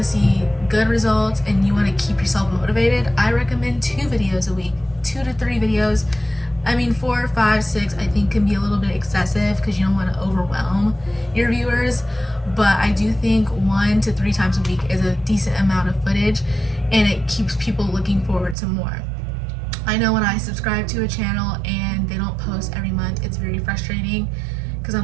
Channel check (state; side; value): drops out; left; at 18.6 s